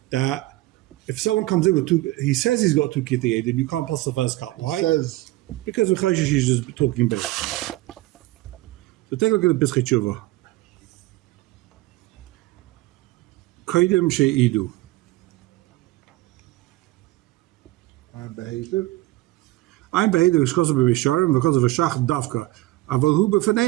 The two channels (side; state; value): left; quieter; 18.5 dB